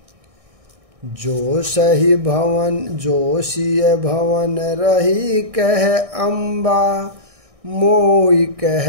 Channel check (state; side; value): late; left; 1.6 ms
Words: जो सही भवन जो सिय भवन रही कह अम्बा, मोई